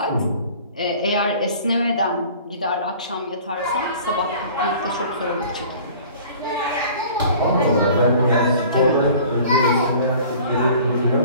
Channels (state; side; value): inverted; both; correlation -0.47